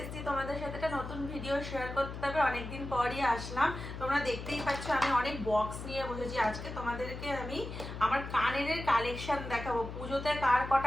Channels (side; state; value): left; noise; hum, 8 dB below the sound